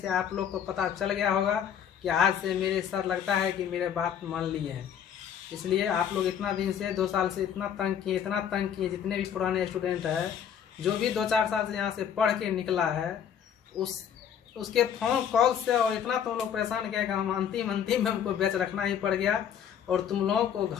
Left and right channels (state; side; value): quieter; right; 8.7 dB